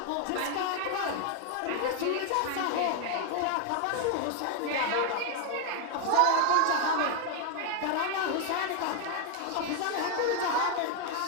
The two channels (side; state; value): both; different; correlation 0.01